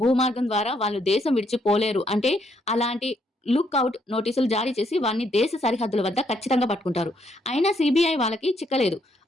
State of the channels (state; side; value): normal; both; correlation 0.73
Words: భూమార్గం ద్వారా వాళ్ళు దేశం విడిచిపోలేరు అంటే అలాంటి లుక్అవుట్ నోటీసులు జారీ చేసి వారిని దేశ సరిహద్దుల వద్ద ఖచ్చితంగా పట్టుకుంటారు. అయినా సిబిఐ వాళ్ళకి చిక్కలేదు.